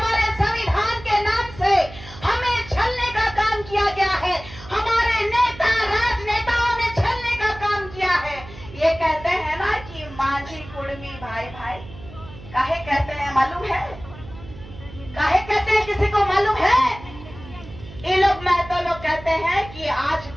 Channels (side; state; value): right; noise; hum, 17 dB below the sound